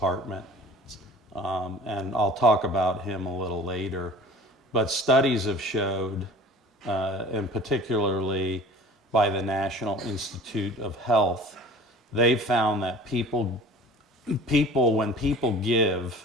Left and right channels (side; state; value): both; normal; correlation 0.43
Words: And I'll talk about him a little later. But studies have showed, and particularly by the National Institute of Health, they've found that when people give